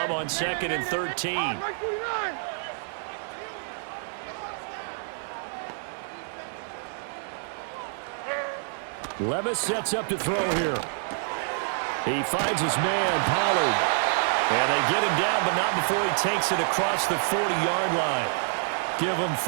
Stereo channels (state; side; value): silent; left; digital silence